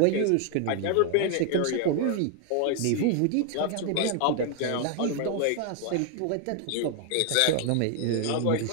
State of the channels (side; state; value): both; different; correlation 0.00